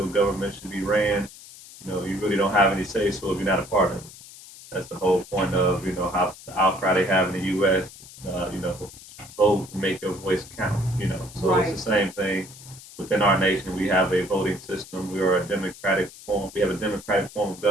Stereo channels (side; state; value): left; noise; hiss, 18 dB below the sound